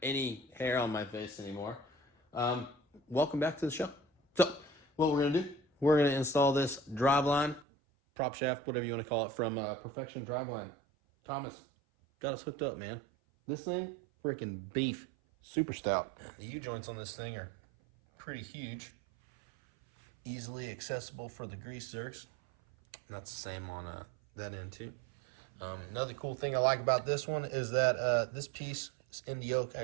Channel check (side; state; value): left; drops out; at 7.7 s